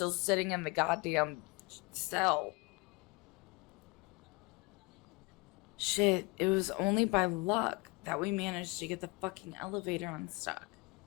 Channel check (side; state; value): right; quieter; 26.5 dB